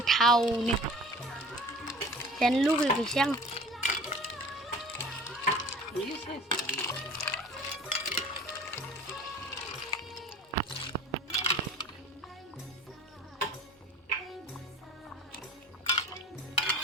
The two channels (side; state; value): both; normal; correlation 0.43